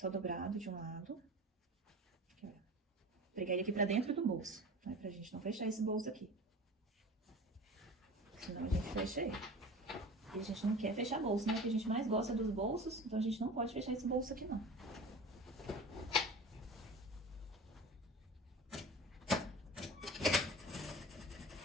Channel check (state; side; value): normal; both; correlation 0.35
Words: dobrado de um lado. Aqui, ó. Pregar ele aqui pra dentro do bolso, né, pra gente não fechar esse bolso aqui. Senão a gente fecha ele. E a gente não quer fechar bolso, né? O que a gente mais gosta dos bolsos, então a gente não pode fechar esse bolso aqui, não.